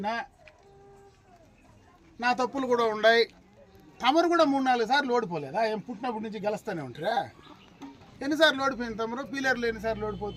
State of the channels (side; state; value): both; identical; correlation 1.00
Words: నా తప్పులు కూడా ఉన్నాయి. తమరు కూడా 3-4 సార్లు ఓడిపోలేదా? ఏం పుట్టినప్పటి నుంచి గెలుస్తూనే ఉంటారా? ఎన్నిసార్లు ఓడిపోయింది తమరు? పీలర్లు ఎన్నిసార్లు